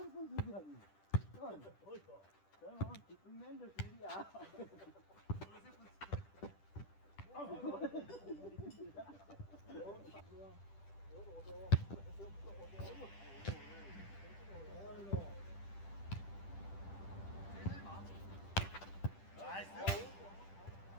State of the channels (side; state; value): right; late; 10 ms